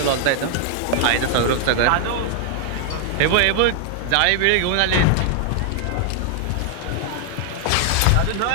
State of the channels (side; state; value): both; different; correlation 0.00